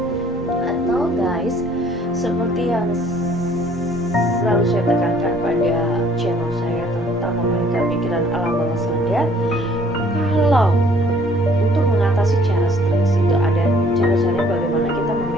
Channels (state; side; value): normal; both; correlation 0.59